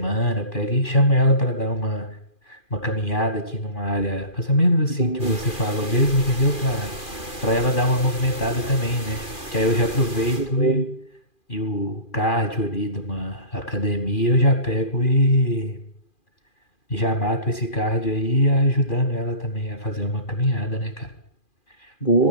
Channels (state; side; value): late; right; 2.4 ms